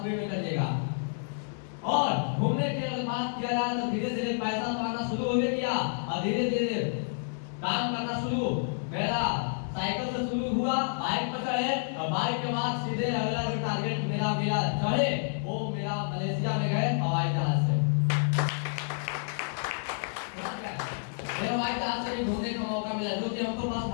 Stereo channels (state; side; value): silent; right; digital silence